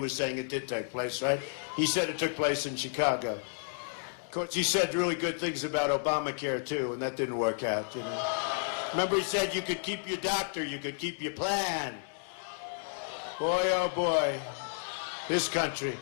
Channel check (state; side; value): silent; right; digital silence